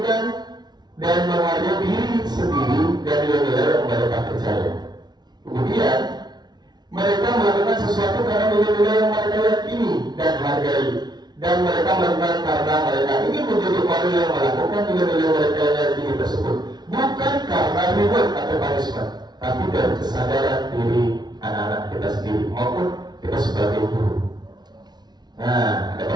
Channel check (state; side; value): late; left; 0.20 ms